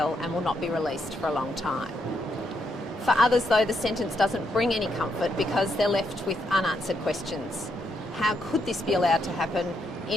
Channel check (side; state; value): both; normal; correlation 0.78